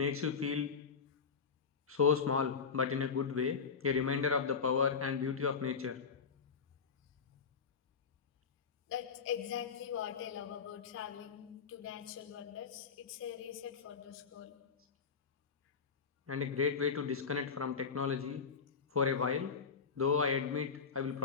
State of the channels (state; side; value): quieter; right; 5.7 dB